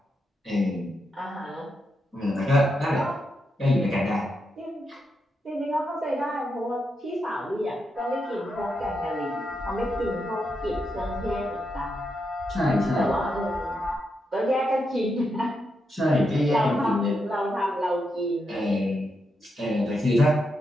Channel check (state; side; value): normal; both; correlation 0.84